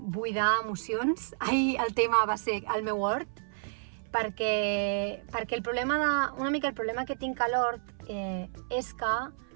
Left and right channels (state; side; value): silent; left; 56 dB below the other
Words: emocions. Ahir el tema va ser el meu hort, perquè el problema que tinc a l'hort és que